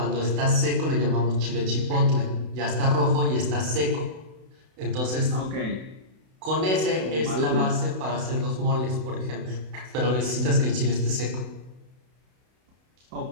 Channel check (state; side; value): late; left; 32 ms